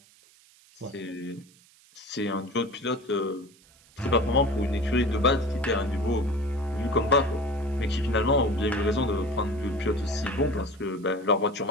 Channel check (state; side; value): noise; right; hiss, 28 dB below the sound